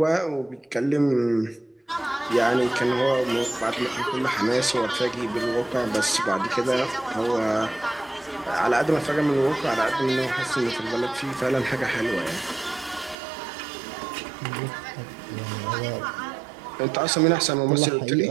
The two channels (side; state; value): left; drops out; at 13.2 s